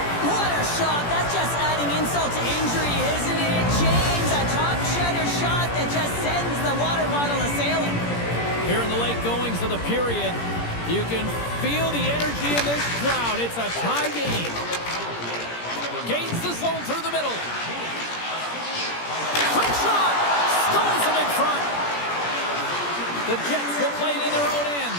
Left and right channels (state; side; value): late; right; 17 ms